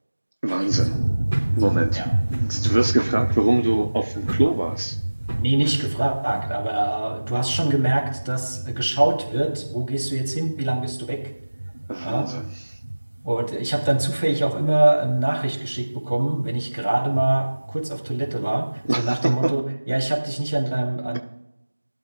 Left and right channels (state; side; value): inverted; both; correlation -1.00